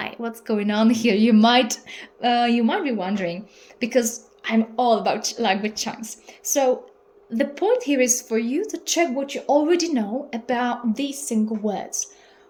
What's going on here? You might be wondering, because I'm all about language chunks. So the point here is for you to check what you already know about these single words.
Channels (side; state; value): both; identical; correlation 1.00